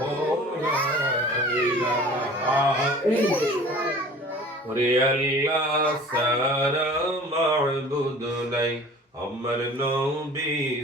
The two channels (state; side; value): normal; both; correlation 0.44